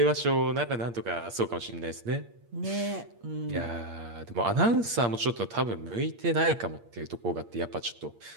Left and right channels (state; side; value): late; left; 8.6 ms